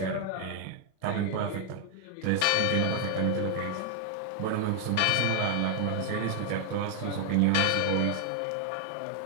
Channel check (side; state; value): both; different; correlation 0.00